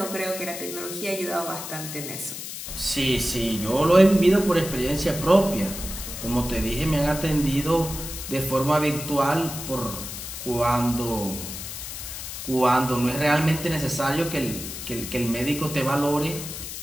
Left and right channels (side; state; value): left; noise; hiss, 8 dB below the sound